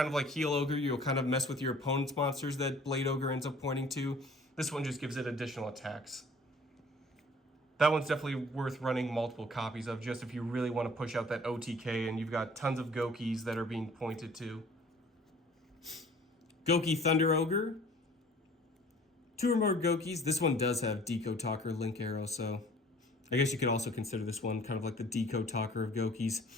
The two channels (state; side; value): normal; both; correlation 0.51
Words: of like Heal Ogre, you'll kind of mess with your opponent's monsters that Blade Ogre ends up pointing to. This one just gives it additional attacks. That one's definitely worth running multiple copies of, just if you really want to push out that OTK and you've got tons of Goukis that are being pointed to. Gouki Thunder Ogre. 2 or more Goukis. This one does have Decode Talker Link Arrow, so I guess you could also consider this one kind of like the Decode Talker of Goukis.